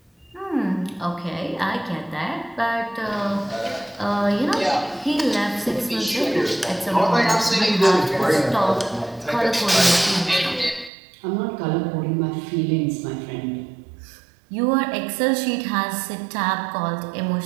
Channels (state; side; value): drops out; left; at 10.9 s